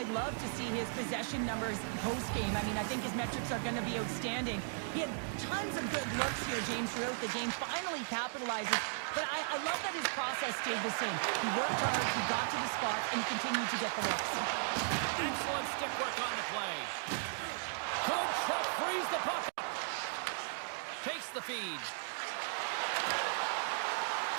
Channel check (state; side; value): silent; left; digital silence